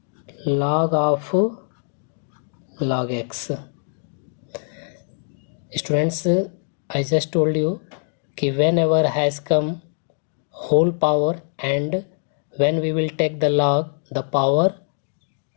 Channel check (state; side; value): silent; right; 63 dB below the other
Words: log of log x. Students, I just told you कि whenever has come whole power and when we will take the log, the power